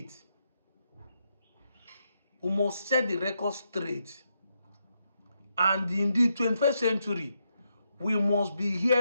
We must set the record straight. And in the 21st century, we must be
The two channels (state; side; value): inverted; both; correlation -0.82